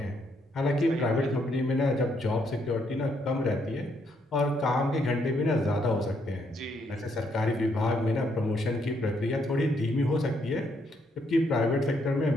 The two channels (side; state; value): both; normal; correlation 0.73